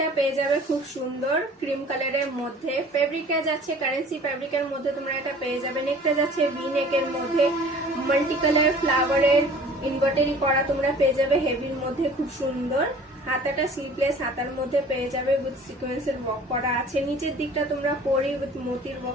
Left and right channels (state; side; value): normal; both; correlation 0.47